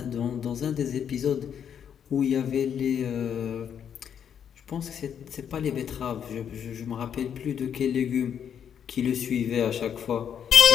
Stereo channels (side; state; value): right; quieter; 8.4 dB